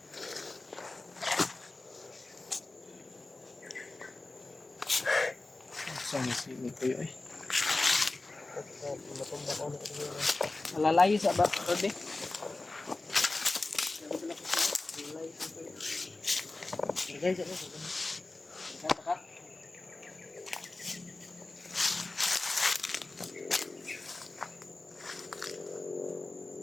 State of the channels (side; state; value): right; quieter; 3.2 dB